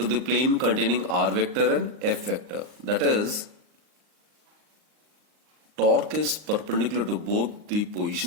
the plane containing R vector and F vector. That is, torque is perpendicular to both the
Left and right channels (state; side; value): late; left; 39 ms